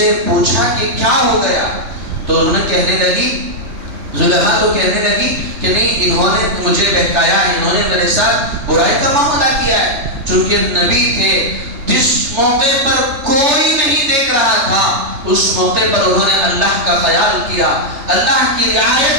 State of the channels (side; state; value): left; late; 3.3 ms